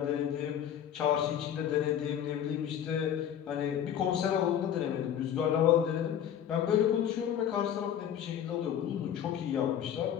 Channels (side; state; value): right; quieter; 9.7 dB